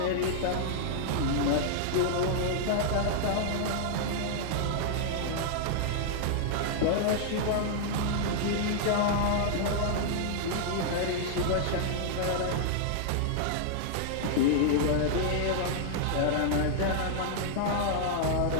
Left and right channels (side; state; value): both; different; correlation -0.01